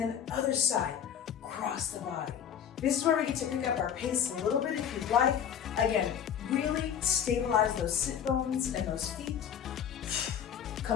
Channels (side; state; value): right; quieter; 8.7 dB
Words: other side, across the body. This is where we get to pick up our pace a little bit if you'd like. Again, really stabilize those sit bones and those feet.